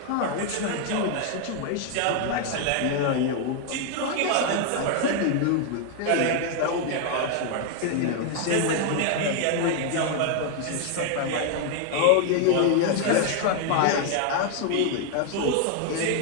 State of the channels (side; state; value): both; different; correlation 0.00